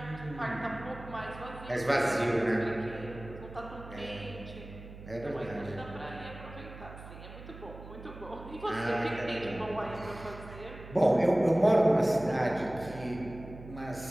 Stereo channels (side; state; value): right; noise; hum, 14 dB below the sound